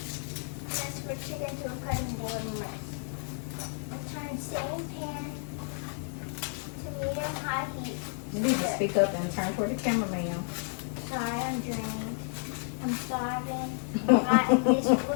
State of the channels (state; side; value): silent; right; 57 dB below the other